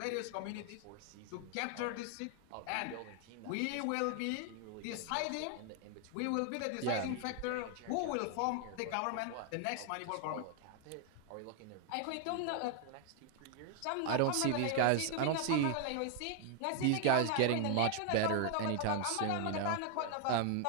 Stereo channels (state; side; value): different; both; correlation 0.00